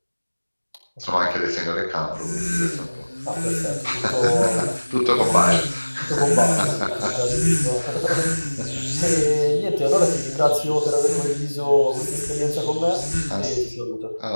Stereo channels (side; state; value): both; inverted; correlation -1.00